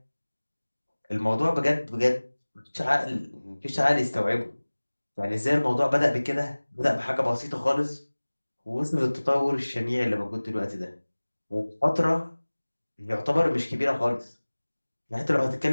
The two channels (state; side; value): inverted; both; correlation -1.00